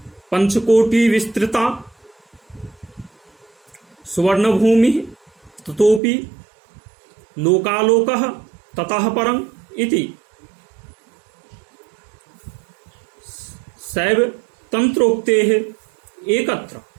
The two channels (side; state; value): left; drops out; at 6.0 s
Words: पंचकोटि विस्तृता सुवर्ण भूमि ततोपि लोकालोकः ततः परं इति शैव तंत्रोक्तेः एकत्र